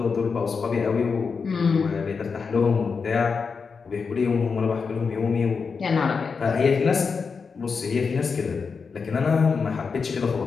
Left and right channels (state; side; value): quieter; right; 5.3 dB